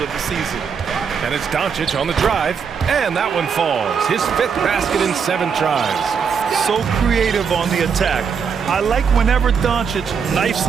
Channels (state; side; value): quieter; left; 6.4 dB